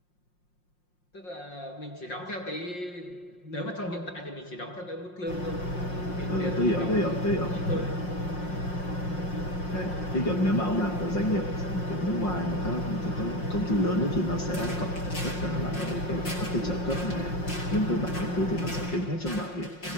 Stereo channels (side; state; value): right; late; 5.6 ms